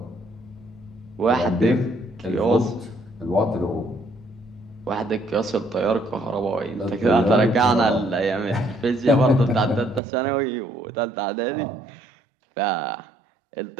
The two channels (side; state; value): left; drops out; at 10.0 s